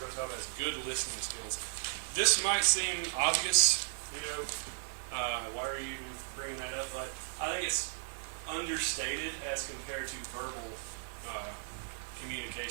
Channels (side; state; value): left; silent; 54 dB below the other